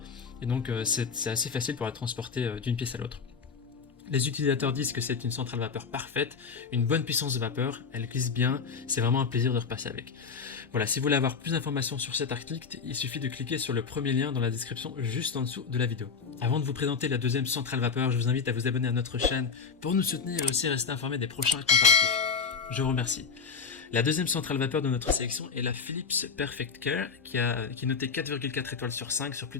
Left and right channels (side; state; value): right; quieter; 5.6 dB